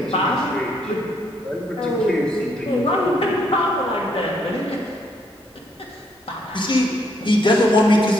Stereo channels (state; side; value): normal; both; correlation 0.71